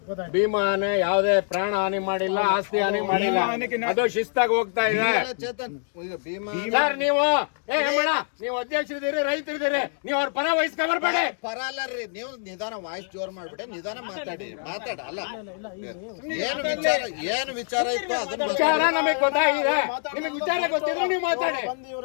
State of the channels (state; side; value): silent; right; digital silence